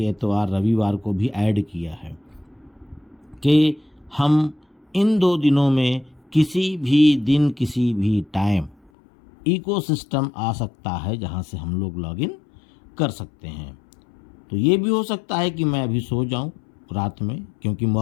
एतवार रविवार को भी ऐड किया है कि हम इन 2 दिनों में किसी भी दिन किसी भी टाइम इकोसिस्टम आ सकता है जहां से हम लोग लॉगिन कर सकते हैं। तो ये भी हो सकता है कि मैं अभी सो जाऊं रात में, क्योंकि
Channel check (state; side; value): drops out; right; at 8.9 s